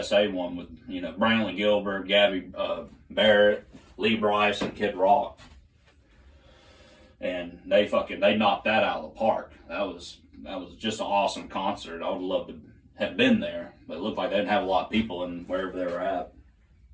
one with, Brantley Gilbert, Gabby Barrett, Lee Brice, and Kid Rock. And they knocked that out of the park. That was just an awesome concert. I would love to have been there, but it looked like they didn't have a lot of people in wherever they were at.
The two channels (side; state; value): both; identical; correlation 1.00